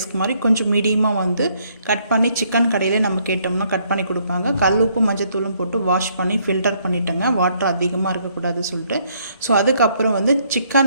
மாதிரி கொஞ்சம் மீடியமாக வந்து கட் பண்ணி சிக்கன் கடையிலே நம்ம கேட்டோம்னா கட் பண்ணி கொடுப்பாங்க. கல் உப்பு மஞ்சத்தூளும் போட்டு வாஷ் பண்ணி ஃபில்டர் பண்ணிட்டேங்க, வாட்டர் அதிகமாக இருக்கக்கூடாது சொல்லிட்டு. ஸோ அதுக்கப்புறம் வந்து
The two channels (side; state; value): both; inverted; correlation -0.69